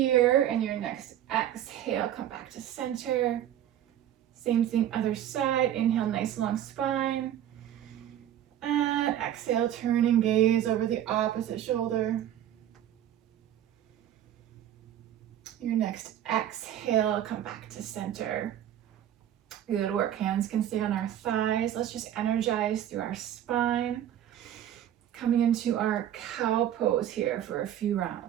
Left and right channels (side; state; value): left; quieter; 11.2 dB